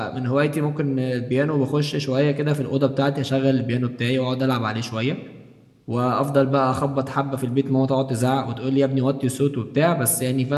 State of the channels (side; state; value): both; identical; correlation 1.00